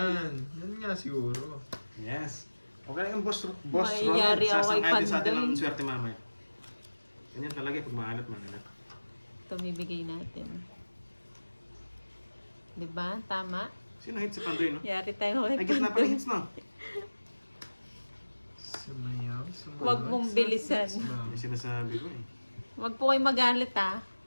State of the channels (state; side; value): inverted; both; correlation -1.00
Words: Yan nga siguro. Yes. Okay lang yung boss Ron. Mayayari ako kay Sasang-ayon sa atin Pandoy. ang swerte mamaya. Ganyan talaga pag maalat. Ito bibigay natin. Di ba? Tama? Sino hit si Pandoy, no? Yari tayo kay Ay, gitna pa Pandoy. hits, no? Sumayaw, sumunod. Huwag mong sa bilisan. sex ba? Yung sinasabi ko eh. Huwag po kayo magalit ah.